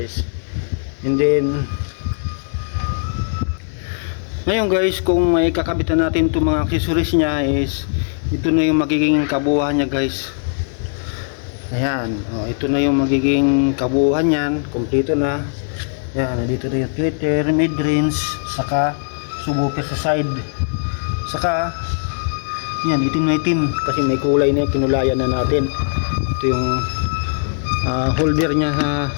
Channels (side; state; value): right; silent; digital silence